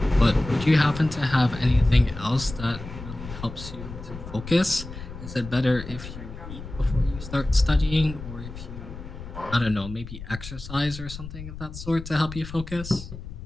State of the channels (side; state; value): left; noise; rumble, 12 dB below the sound